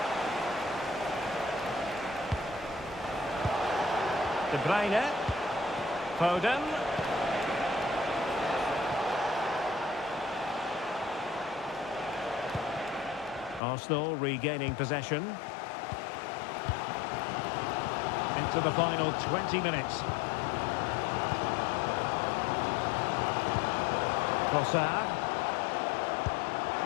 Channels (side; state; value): right; drops out; at 13.6 s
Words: De Bruyne. Foden. Arsenal regaining possession. Into the final 20 minutes. Trossard.